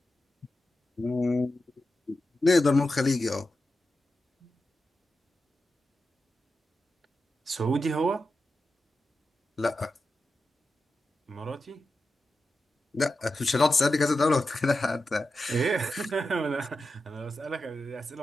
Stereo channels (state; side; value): normal; both; correlation 0.90